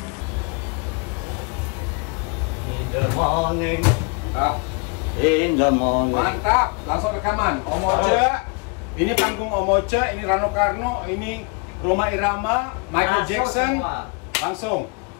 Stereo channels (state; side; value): quieter; right; 32.9 dB